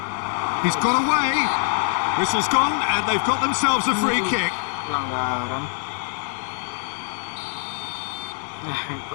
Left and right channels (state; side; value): silent; right; 58 dB below the other